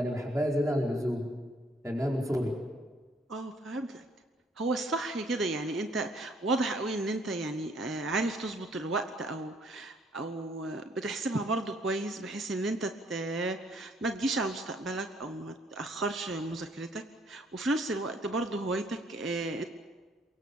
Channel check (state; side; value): normal; both; correlation 0.64